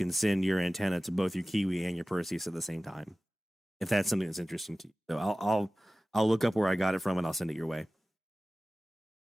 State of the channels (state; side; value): normal; both; correlation 0.96